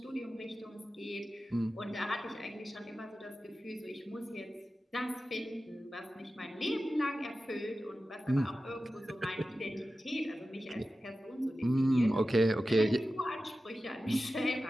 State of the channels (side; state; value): both; normal; correlation 0.94